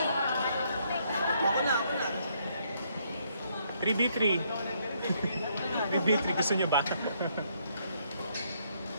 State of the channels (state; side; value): inverted; both; correlation -0.71